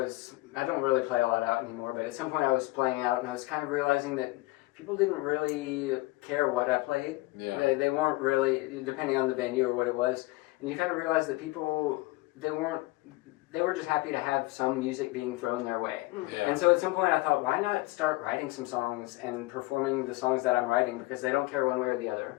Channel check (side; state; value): right; quieter; 21.2 dB